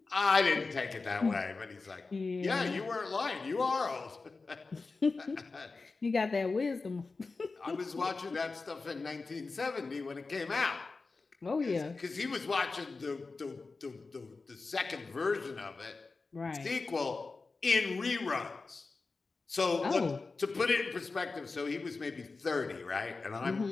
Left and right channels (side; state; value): right; quieter; 4.0 dB